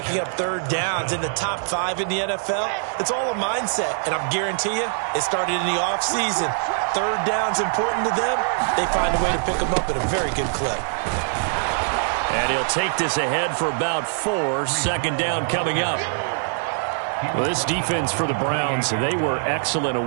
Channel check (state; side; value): silent; left; digital silence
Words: up 3rd downs in the top 5 in the NFL. It's all a mindset, and I'm guarantee you it started in the offseason. 3rd down's important to them. They find a way to pick them up at a very good clip. And he'll take this ahead for about 4. 2nd down coming up. Well, this defense for the Browns, they were excellent a